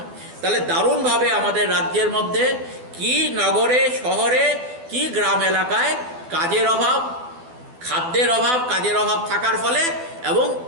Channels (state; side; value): late; left; 12 ms